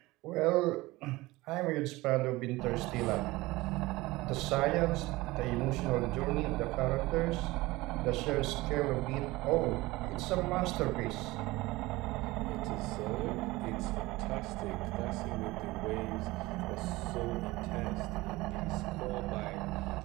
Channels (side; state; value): left; quieter; 20.2 dB